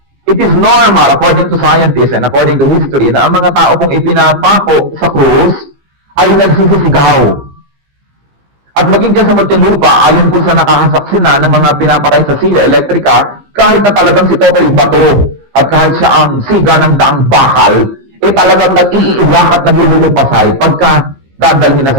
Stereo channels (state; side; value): late; left; 15 ms